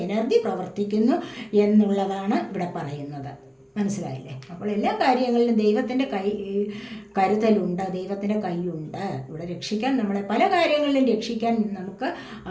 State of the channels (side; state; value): both; identical; correlation 1.00